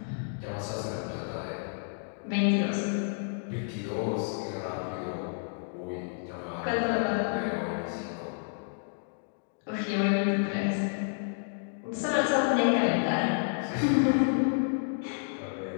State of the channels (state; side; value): silent; right; digital silence